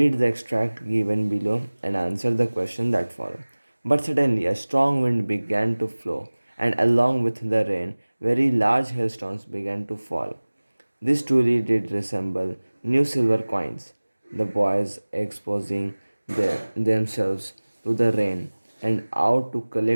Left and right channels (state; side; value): inverted; both; correlation -1.00